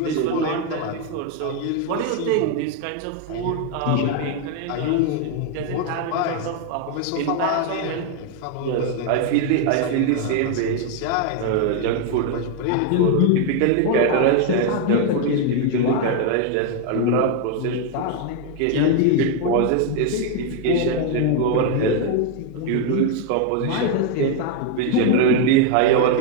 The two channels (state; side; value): different; both; correlation 0.01